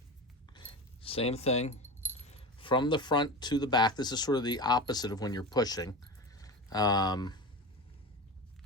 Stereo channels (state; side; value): normal; both; correlation 0.25